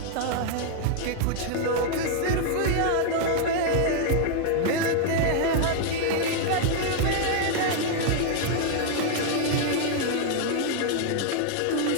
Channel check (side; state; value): both; different; correlation 0.00